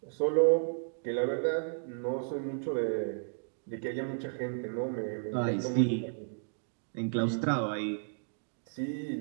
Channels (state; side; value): silent; left; digital silence